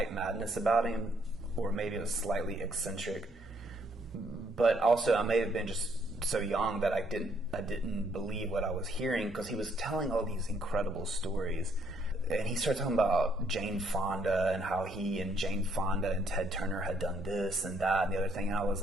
madness about him, or maybe it was slightly eccentric. But also, I may have been just so young that I didn't believe what I was hearing, because he was telling all these incredible stories. And he started talking about Jane Fonda and how he and Jane Fonda and Ted Turner had done this and that and the other thing. And I was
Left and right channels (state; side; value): normal; both; correlation 0.69